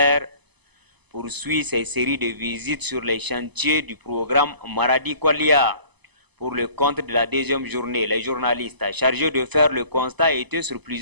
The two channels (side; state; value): left; late; 0.99 ms